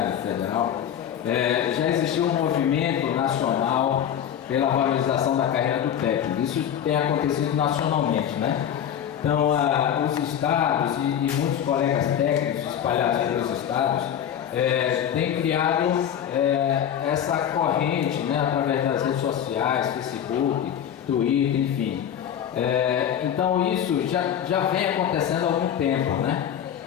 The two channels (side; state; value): right; quieter; 9.5 dB